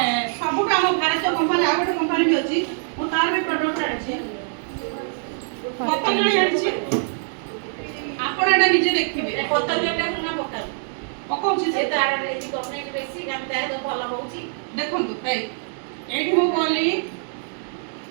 ସବୁଠୁ ଆମ ଭାରତୀୟ କମ୍ପାନୀ ଆଉ ଗୋଟେ କମ୍ପାନୀ ବି ଅଛି। ମୁଁ ତାର ବି ପ୍ରଡକ୍ଟ ଆଣିଛି ପତଞ୍ଜଳି ଆଣିଛି। ଆପଣ ଏଟା ନିଜେ ଦେଖିବେ ପତଞ୍ଜଳିଟା ନା ପକାଉ ପକଉଛି ସେ ତାର ଏଠି ଗଭର୍ଣ୍ଣମେଣ୍ଟ ବେଶୀ ଆମେ ତାର ଭଲ ହଉଛି। ଦେଖନ୍ତୁ ଏଇଠି ମୁଁ କହିଲି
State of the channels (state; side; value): silent; left; digital silence